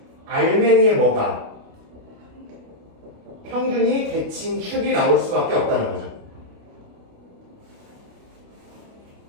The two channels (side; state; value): left; late; 29 ms